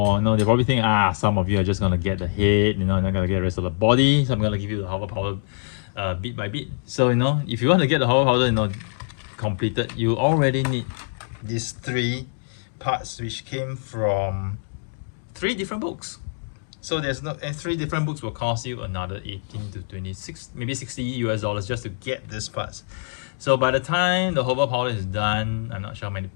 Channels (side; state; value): right; silent; digital silence